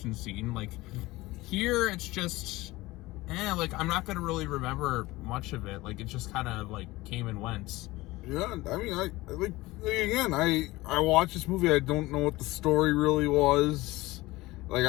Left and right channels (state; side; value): quieter; right; 19.6 dB